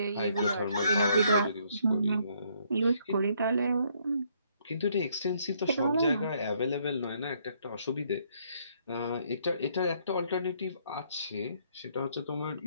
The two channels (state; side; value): inverted; both; correlation -0.69